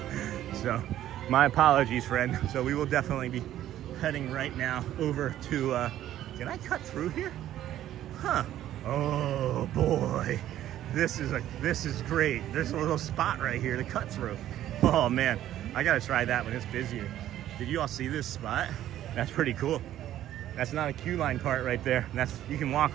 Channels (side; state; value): left; quieter; 12.5 dB